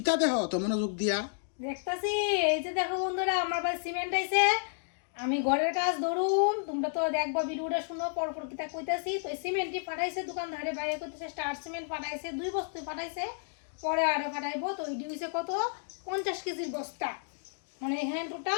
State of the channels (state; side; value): silent; right; digital silence